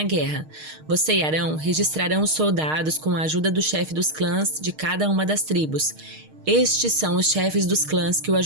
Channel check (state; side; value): late; left; 6.5 ms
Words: guerra. Você e Arão registrarão os soldados com a ajuda do chefe dos clãs de cada uma das tribos. Estes são os chefes dos clãs que o